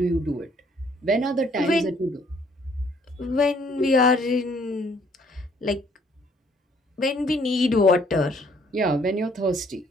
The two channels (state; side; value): normal; both; correlation 0.63